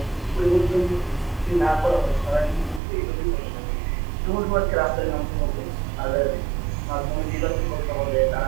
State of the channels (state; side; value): drops out; left; at 2.8 s